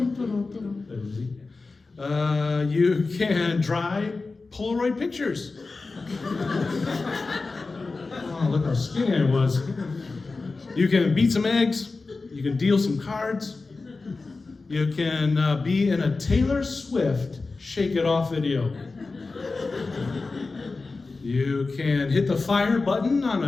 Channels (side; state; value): right; quieter; 3.8 dB